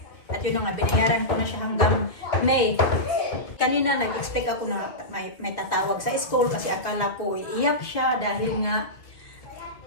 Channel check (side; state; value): right; late; 1.8 ms